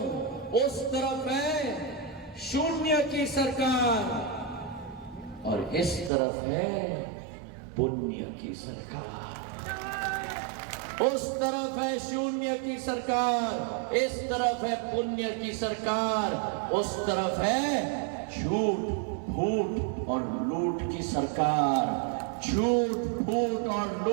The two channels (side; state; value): left; drops out; at 6.1 s